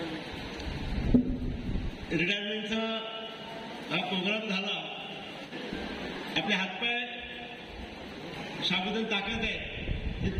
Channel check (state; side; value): identical; both; correlation 1.00